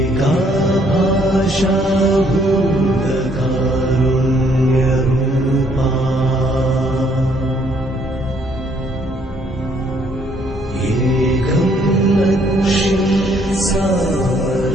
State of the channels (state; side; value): normal; both; correlation 0.66